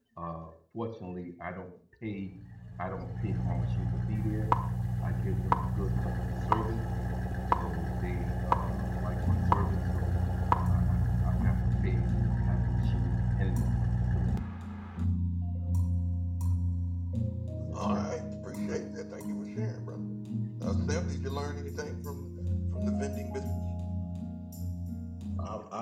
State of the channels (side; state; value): both; identical; correlation 1.00